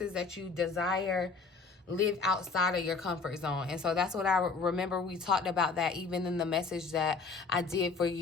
that you desire live outside of your comfort zone. And so that's what I remember. We talked about that even in the message that I did for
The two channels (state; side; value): quieter; right; 4.5 dB